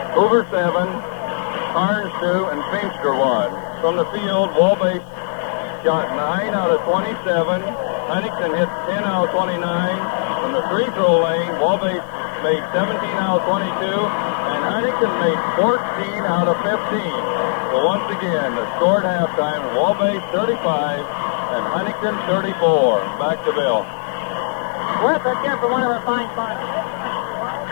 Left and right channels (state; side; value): silent; right; digital silence